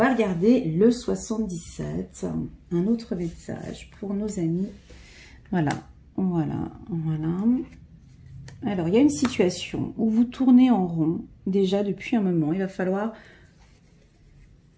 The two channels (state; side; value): identical; both; correlation 1.00